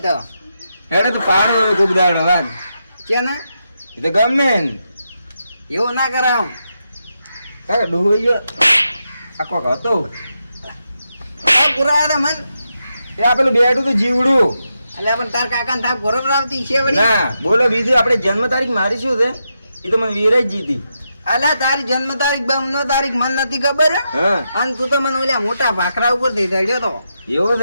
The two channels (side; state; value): both; inverted; correlation -0.85